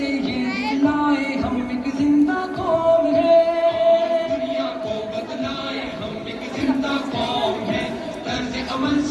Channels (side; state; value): both; identical; correlation 1.00